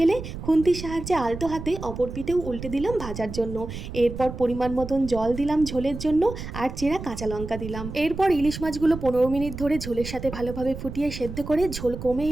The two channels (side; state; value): right; noise; rumble, 9 dB below the sound